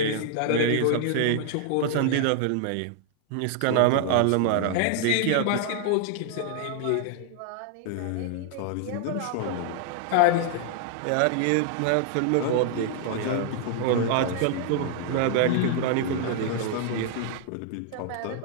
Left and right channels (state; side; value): different; both; correlation -0.01